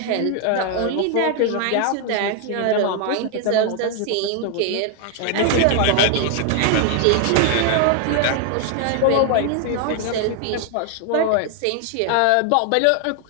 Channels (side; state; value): both; different; correlation 0.00